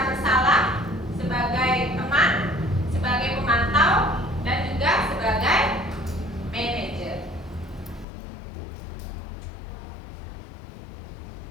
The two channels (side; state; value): right; drops out; at 8.1 s